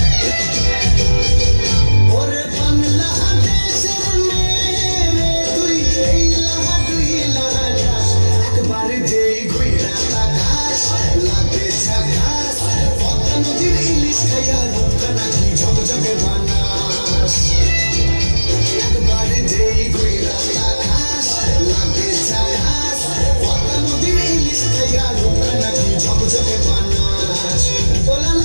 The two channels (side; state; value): both; inverted; correlation -1.00